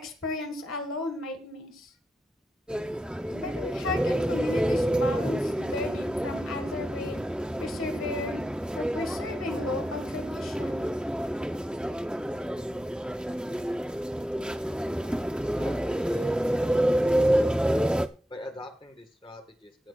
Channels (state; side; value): normal; both; correlation 0.88